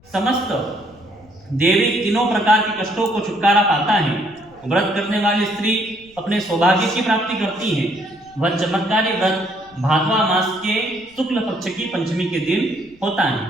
समस्त देवी तीनों प्रकार के कष्टों को छुटकारा पाता है। व्रत करने वाली स्त्री अपने सौभाग्य की प्राप्ति करती है। वह चमत्कारी व्रत भादवा मास के शुक्ल पक्ष की पंचमी के दिन होता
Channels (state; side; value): noise; left; rumble, 28 dB below the sound